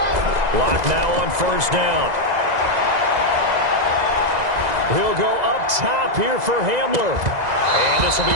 Locke now on 1st down. He'll go up top here for Hamler. And this will be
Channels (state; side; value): late; left; 2.0 ms